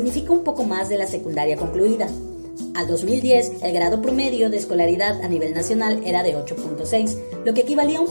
un poco más de la secundaria concluida. Al 2010, el grado promedio de escolaridad a nivel nacional era de 8.6, lo que equivalía a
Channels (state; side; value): inverted; both; correlation -1.00